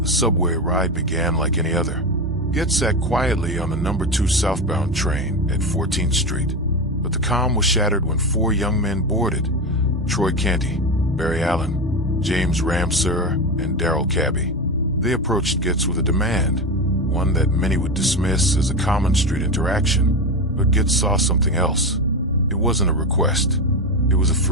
subway ride began like any other. Goetz sat quietly on the number 2 southbound train at 14th Street, but the calm was shattered when 4 young men boarded: Troy Canty, Barry Allen, James Ramseur, and Darrell Cabby. They approached Goetz with a demand, one that many would dismiss as a common street interaction. But Goetz saw something else. It wasn't a request. It was a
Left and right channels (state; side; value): normal; both; correlation 0.18